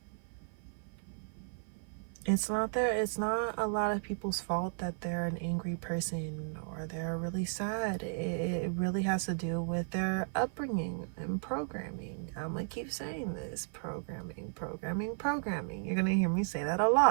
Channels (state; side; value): silent; left; 55 dB below the other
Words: a lot of people's fault that they're an angry person or they're really sad. It really has to do with their upbringing and programming. I'm gonna keep saying this: programming. You're gonna hear me say that a